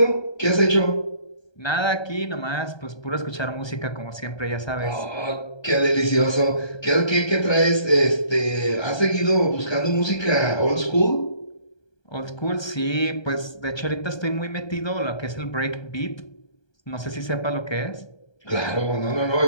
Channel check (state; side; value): late; right; 1.3 ms